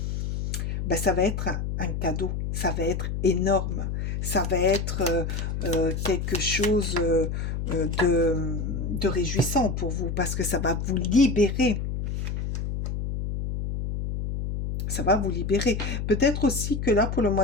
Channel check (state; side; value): noise; left; hum, 3 dB below the sound